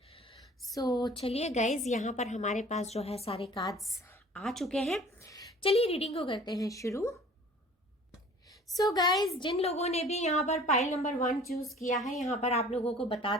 So चलिए गाइज, यहाँ पर हमारे पास जो है सारे कार्ड्स आ चुके हैं। चलिए रीडिंग को करते हैं शुरू। सो गाइज, जिन लोगों ने भी यहाँ पर पाइल नंबर 1 चूज किया है, यहाँ पर आप लोगों को बता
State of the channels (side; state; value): both; normal; correlation 0.48